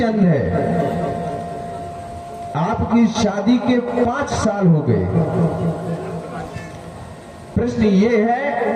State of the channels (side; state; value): both; identical; correlation 1.00